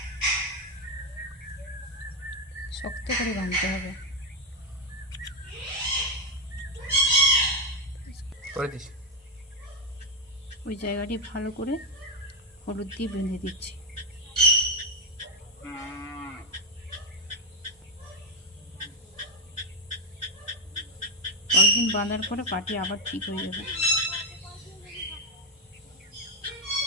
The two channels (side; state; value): both; normal; correlation 0.04